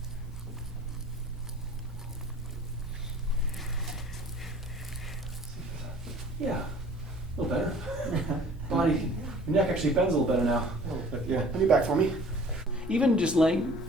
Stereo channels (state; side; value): normal; both; correlation 0.50